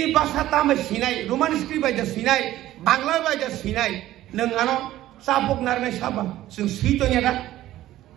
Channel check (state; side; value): quieter; left; 14.4 dB